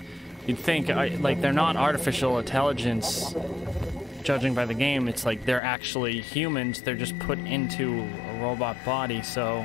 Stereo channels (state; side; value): drops out; right; at 5.6 s